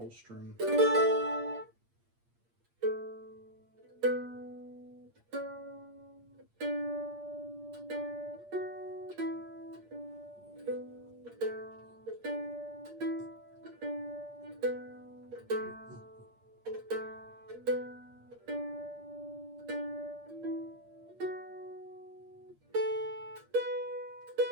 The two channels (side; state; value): left; late; 8.6 ms